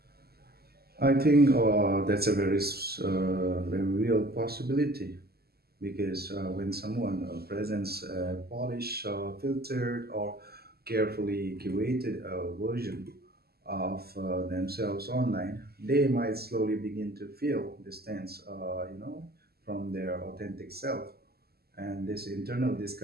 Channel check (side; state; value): left; late; 0.46 ms